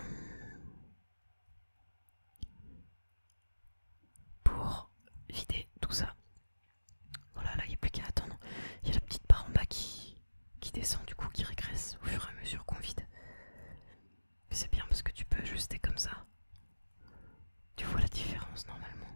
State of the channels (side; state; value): both; inverted; correlation -1.00